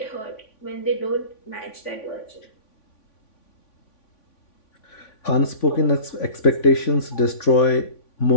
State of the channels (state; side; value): late; right; 3.5 ms